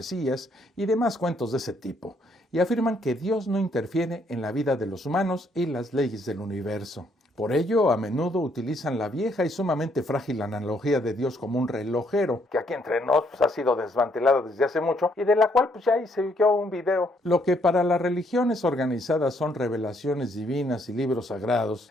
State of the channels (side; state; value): both; normal; correlation 0.70